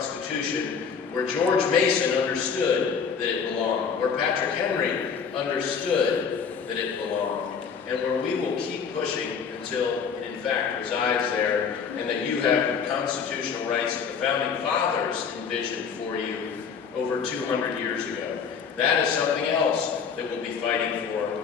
where George Mason understood that it belonged, where Patrick Henry understood that it belonged, and where we will keep pushing until it in fact resides there, and that you have the constitutional rights that the Founding Fathers envisioned for you over 200 years ago. That is something else that we'll be fighting for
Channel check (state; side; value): quieter; right; 6.4 dB